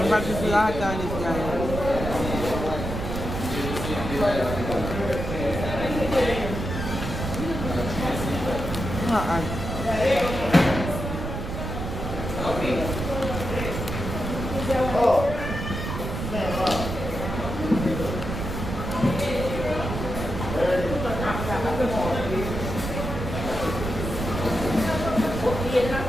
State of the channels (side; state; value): right; noise; rumble, 5 dB below the sound